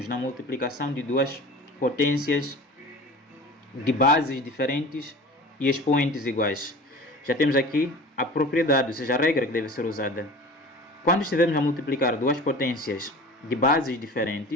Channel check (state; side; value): normal; both; correlation 0.39